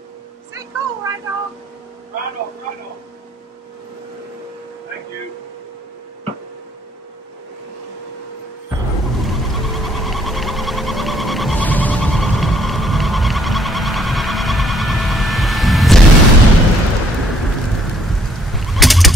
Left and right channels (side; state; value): both; normal; correlation 0.65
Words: Stay cool, right, dog? Right on, right on. Thank you.